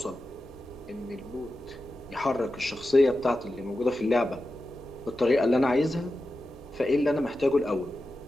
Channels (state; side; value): normal; both; correlation 0.92